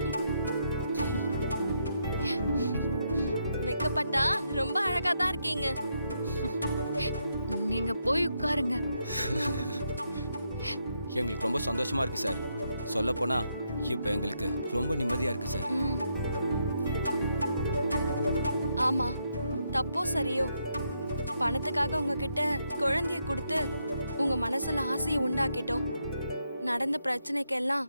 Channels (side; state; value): both; inverted; correlation -0.79